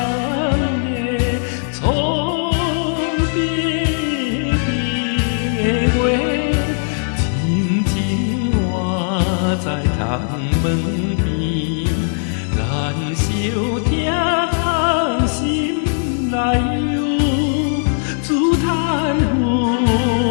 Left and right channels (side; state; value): right; silent; 63 dB below the other